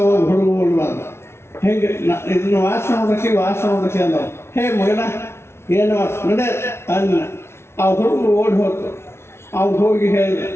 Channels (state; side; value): late; right; 0.12 ms